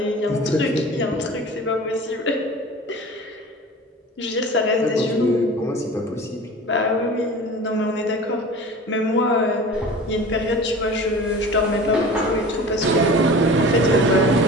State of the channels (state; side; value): normal; both; correlation 0.38